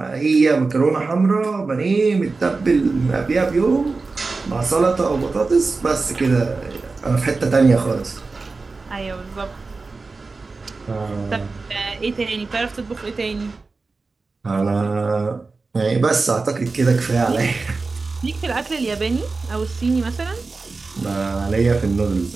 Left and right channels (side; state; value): left; quieter; 3.9 dB